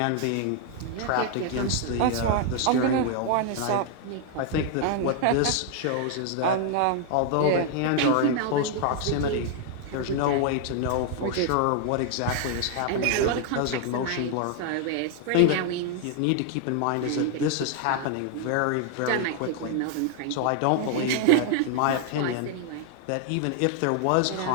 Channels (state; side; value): different; both; correlation 0.00